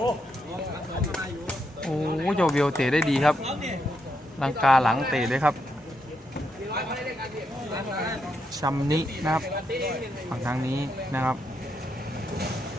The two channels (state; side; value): normal; both; correlation 0.81